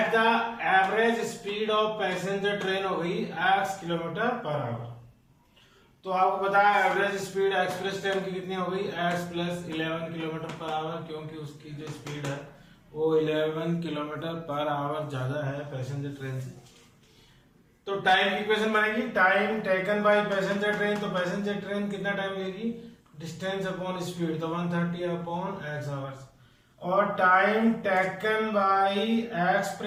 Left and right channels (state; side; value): identical; both; correlation 1.00